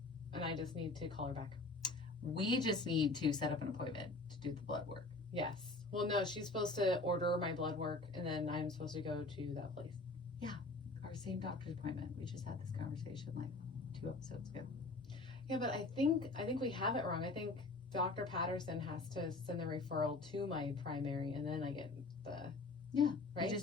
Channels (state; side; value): quieter; right; 3.3 dB